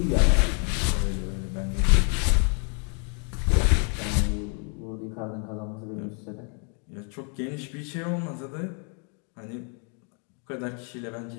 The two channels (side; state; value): right; quieter; 39.7 dB